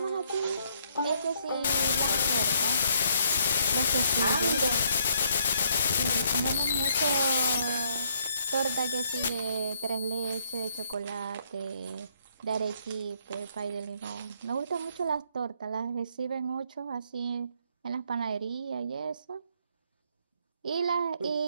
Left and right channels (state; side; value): inverted; both; correlation -0.70